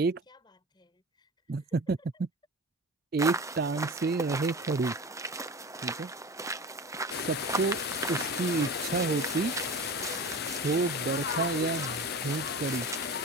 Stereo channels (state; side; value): normal; both; correlation 0.32